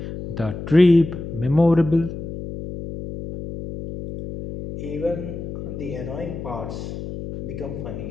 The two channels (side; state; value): left; noise; hum, 8 dB below the sound